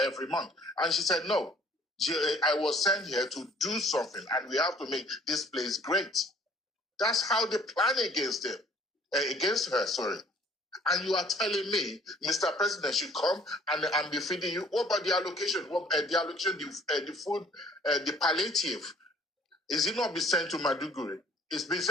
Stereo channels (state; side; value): normal; both; correlation 0.57